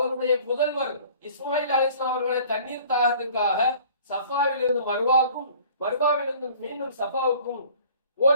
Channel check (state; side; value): inverted; both; correlation -0.50